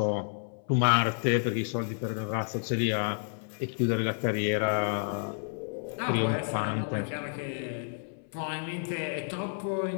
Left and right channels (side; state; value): right; silent; 58 dB below the other